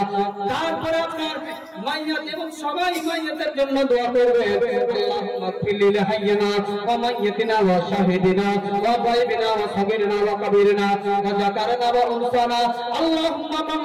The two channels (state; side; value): identical; both; correlation 1.00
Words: তারপরে আপনার মাইয়াত এবং সবাই মাইয়াতের জন্য দোয়া করবেন। আল্লাহুম্মা ফিলিল হাইয়িনা ওয়া মাইয়াতিনা ওয়া শাহিদিনা ওয়া গায়বিনা ওয়া সাগীরিনা ওয়া কাবীরিনা ওয়া যাকারিনা ওয়া উনসানা। আল্লাহুম্মা মান